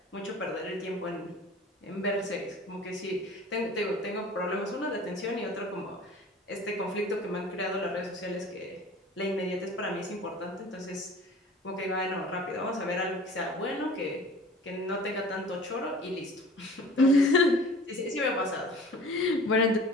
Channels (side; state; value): both; normal; correlation 0.44